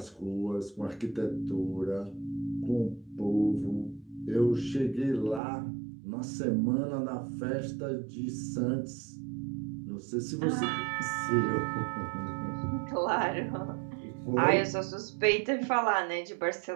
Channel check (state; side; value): drops out; left; at 5.4 s